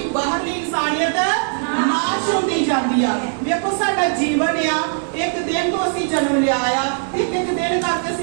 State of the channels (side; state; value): left; silent; digital silence